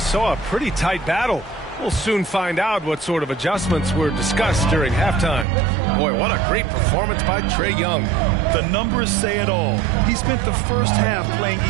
a pretty tight battle. We'll soon find out what sort of adjustments were discussed during halftime. Boy, what a great performance by Trae Young. The numbers say it all. He spent the first half playing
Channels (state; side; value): drops out; left; at 5.5 s